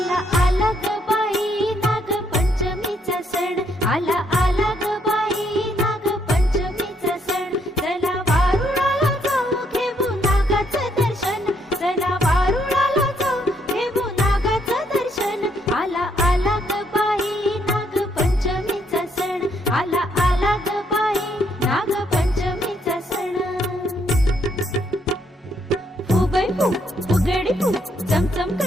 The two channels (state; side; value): normal; both; correlation 0.72